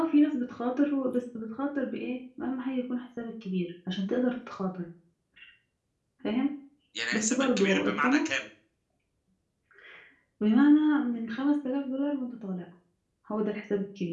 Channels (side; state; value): both; identical; correlation 1.00